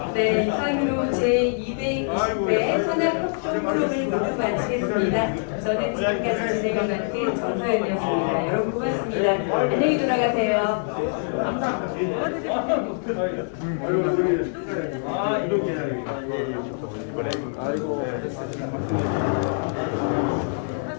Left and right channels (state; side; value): silent; right; digital silence